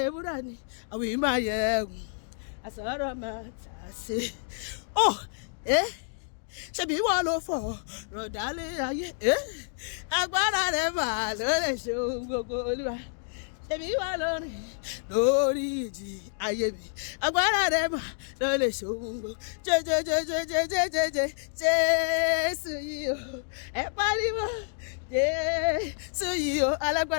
ewúrà ni àwọn ìmọ̀ ayẹ̀wò àsọ̀rọ̀ máa tà sí. Ṣebí wọ́n ló fọ̀ rọ̀dálé ayé. Agbára rẹ̀ máa ló lè ṣe ohun gbogbo. Olúwa ṣebí wọ́n ló rìn lórí ìjì ayé mi. Agbára rẹ̀ máa ló lè ṣe ohun gbogbo. Jésù yìí o, ẹ pariwo. Jésù yìí o,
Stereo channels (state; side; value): silent; right; digital silence